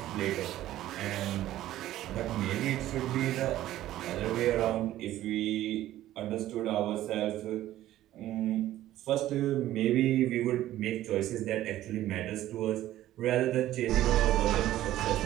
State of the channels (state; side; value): quieter; left; 14.0 dB